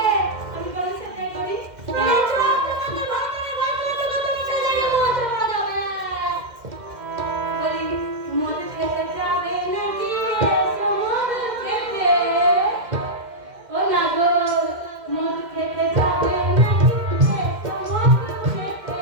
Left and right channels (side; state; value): left; late; 2.1 ms